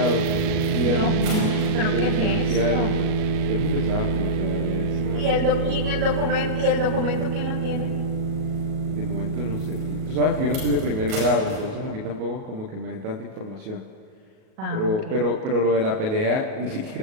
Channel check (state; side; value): late; left; 37 ms